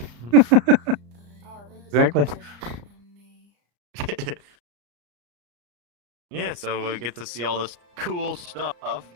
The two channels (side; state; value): left; late; 34 ms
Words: Exactly. Yeah, so we get to see all this cool stuff,